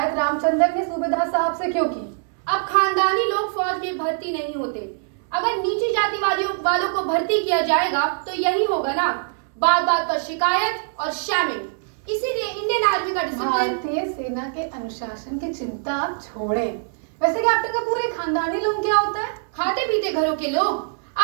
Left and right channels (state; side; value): silent; left; digital silence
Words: रामचंद्र ने सूबेदार साहब से क्यों की? अब खानदानी लोग फौज में भर्ती नहीं होते। अगर नीची जाति वालों को भर्ती किया जाएगा तो यही होगा ना, बात बात पर शिकायत और शैमिंग। इसीलिए इंडियन आर्मी का डिसिप्लिन। भारतीय सेना के अनुशासन की चिंता आप छोड़ें। वैसे कैप्टन कपूर, ये खानदानी लोग क्या होता है? खाते पीते घरों के लोग।